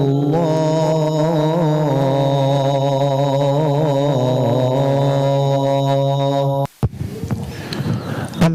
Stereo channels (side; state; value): both; identical; correlation 1.00